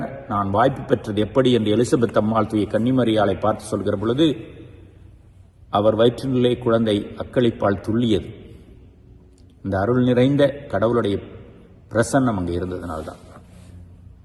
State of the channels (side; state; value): both; identical; correlation 1.00